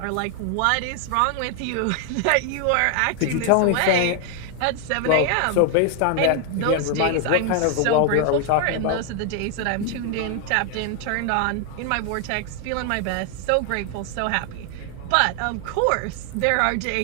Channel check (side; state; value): both; different; correlation 0.00